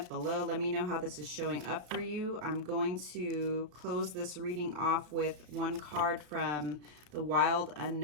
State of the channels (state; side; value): late; left; 34 ms